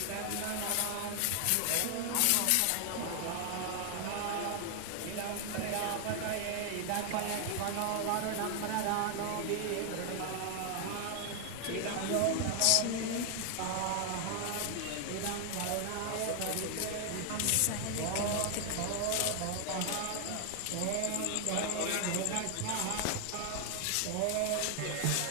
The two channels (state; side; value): different; both; correlation 0.00